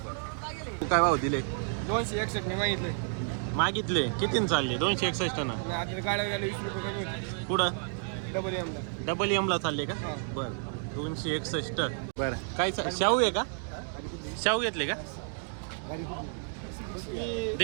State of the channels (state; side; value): silent; left; 57 dB below the other